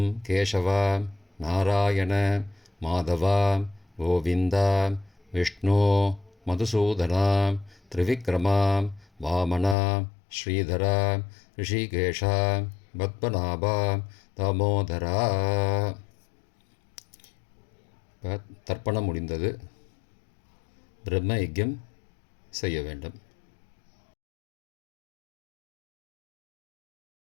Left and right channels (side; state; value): right; drops out; at 9.8 s